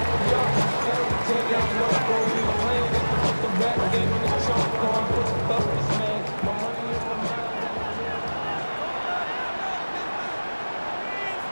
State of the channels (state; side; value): inverted; both; correlation -1.00